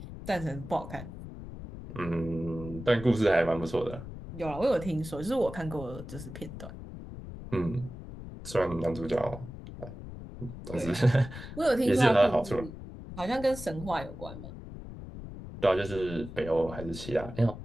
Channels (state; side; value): noise; left; rumble, 12 dB below the sound